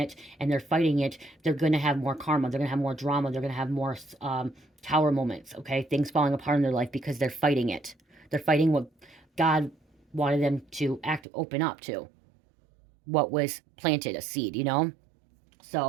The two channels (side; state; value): left; drops out; at 11.2 s